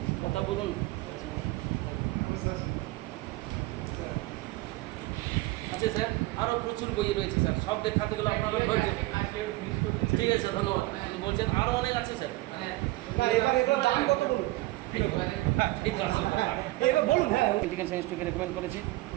কথা বলুন। আচ্ছা স্যার, আরও প্রচুর বই রয়েছে স্যার, সব দেখাতে গেলে আপনারা ধৈর্য। ঠিক আছে, ধন্যবাদ। বলছেন আরও অনেক আছে স্যার। না, এবার এগুলোর দাম কত বলুন? বলুন। হ্যাঁ, মেডিকেল সায়েন্সটাকে রেকমেন্ড করেছে,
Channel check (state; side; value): quieter; left; 19.6 dB